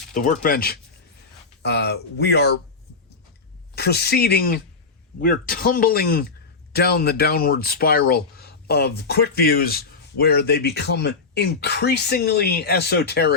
the workbench. We are proceeding. We're tumbling down the downward spiral of quick views where they become increasingly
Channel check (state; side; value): quieter; right; 4.4 dB